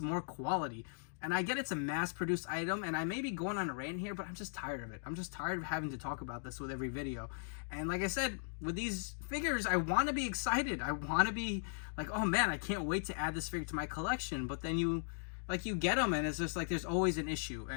quality. And I get it's a mass-produced item, and I may be going on a rant here, but I'm just tired of it. I'm just tired of having to talk about this with every video. And like I said, with these figures, I want to be excited. I want to be like, oh man, I can't wait to add this figure to my collection. But then you like you get them and it's just like there's always an issue.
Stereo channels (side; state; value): right; silent; digital silence